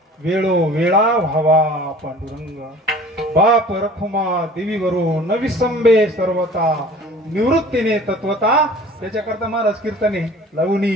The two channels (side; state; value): both; normal; correlation 0.46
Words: वेळो वेळा व्हावा पांडुरंग. बाप रखुमा देवीवरू न विसंबे सर्वता, निवृत्तीने तत्वता. त्याच्याकरता महाराज कीर्तने लवणी